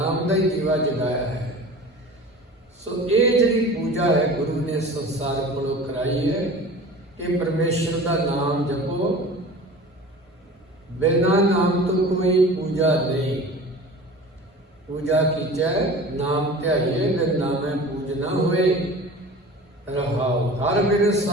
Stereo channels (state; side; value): normal; both; correlation 0.39